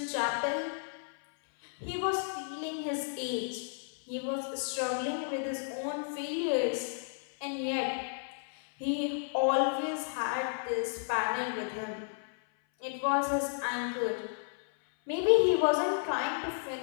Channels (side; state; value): right; silent; 56 dB below the other